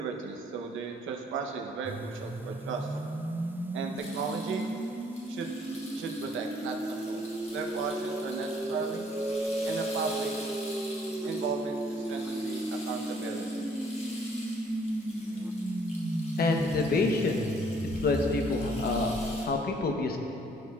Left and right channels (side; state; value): both; normal; correlation 0.61